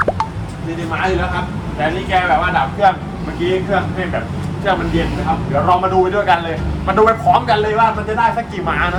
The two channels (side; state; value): both; identical; correlation 1.00